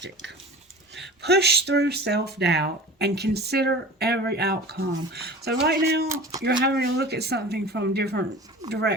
Push through self-doubt and consider every outcome. So right now, you're having to look at something from different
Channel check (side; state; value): both; normal; correlation 0.38